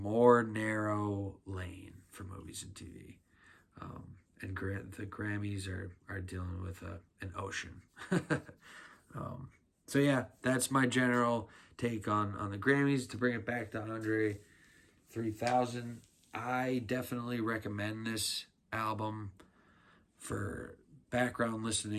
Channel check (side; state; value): both; identical; correlation 1.00